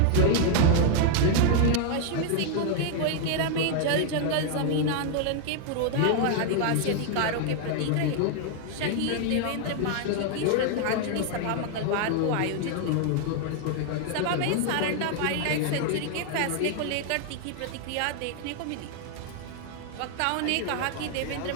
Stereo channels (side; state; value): both; different; correlation 0.00